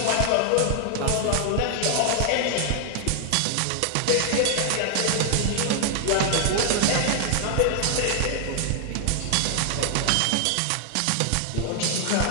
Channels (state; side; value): different; both; correlation 0.00